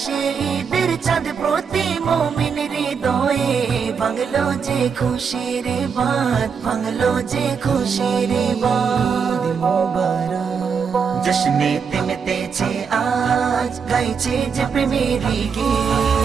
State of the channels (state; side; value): quieter; left; 6.2 dB